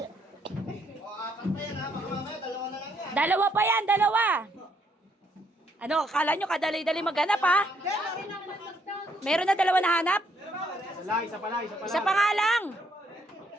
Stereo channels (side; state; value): both; normal; correlation 0.71